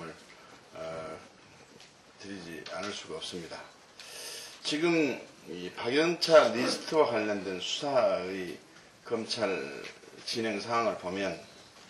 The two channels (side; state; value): both; identical; correlation 1.00